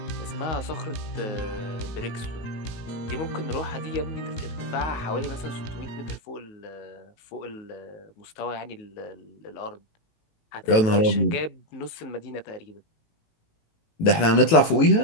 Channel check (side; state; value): right; late; 18 ms